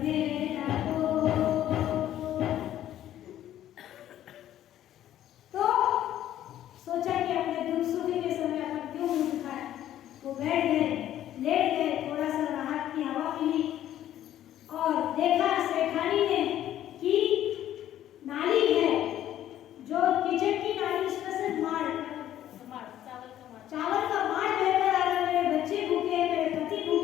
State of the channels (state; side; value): quieter; right; 12.1 dB